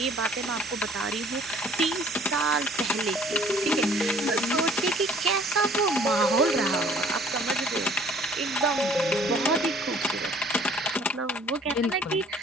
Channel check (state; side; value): normal; both; correlation 0.55